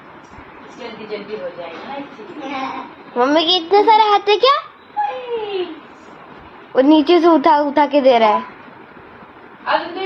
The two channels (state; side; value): identical; both; correlation 1.00